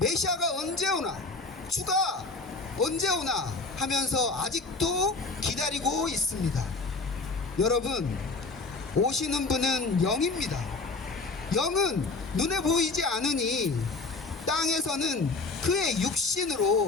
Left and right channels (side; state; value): right; quieter; 3.7 dB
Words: 언제 오나, 주가 언제 오나 하면서 아직도 기다리고 있습니다. 여러분, 오시는 분은 영입니다. 영은 눈에 보이지 않으니 땅에서는 그의